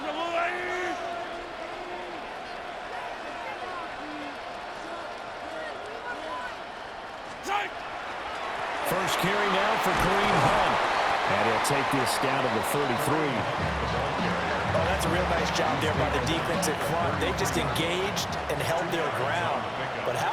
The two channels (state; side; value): identical; both; correlation 1.00